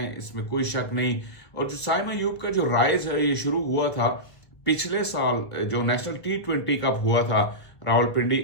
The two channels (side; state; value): right; late; 1.5 ms